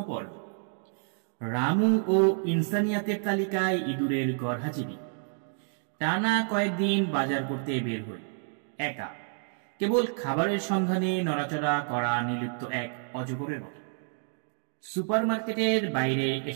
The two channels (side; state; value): left; silent; 58 dB below the other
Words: পর্ব। রামু ও ইনসানিয়াতের তালিকায় ইঁদুরের গরহাজিবি। টানা কয়েকদিন বাজার করতে বের হই, একা, কেবল খাবারের সন্ধানে নড়াচড়া করা নির্লিপ্ত এক অজগরের মতো। সুপারমার্কেটের বাইরে